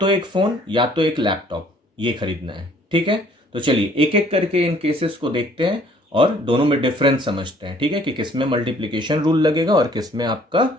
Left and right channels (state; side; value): normal; both; correlation 0.58